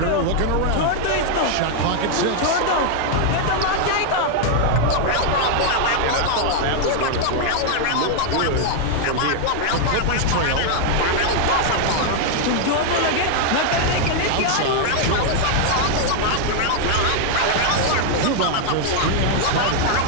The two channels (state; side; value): different; both; correlation 0.00